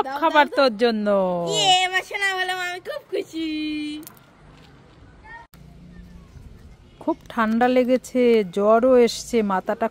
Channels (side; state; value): both; identical; correlation 1.00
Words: খাবার তোর জন্য। না বললাম, আমি খুব খুশি। খুব ঠান্ডা লেগেছে, জ্বরও এসছে, মাথাটা